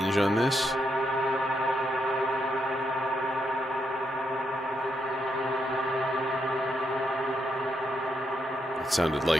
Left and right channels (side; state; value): both; normal; correlation 0.80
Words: on this. It sounded